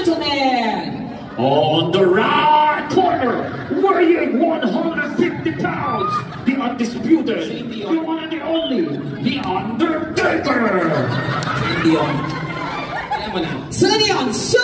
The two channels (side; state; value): both; identical; correlation 1.00